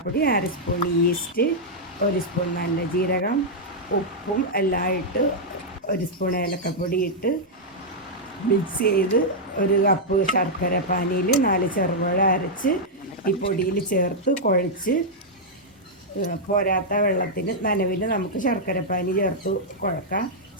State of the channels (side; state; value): both; normal; correlation -0.06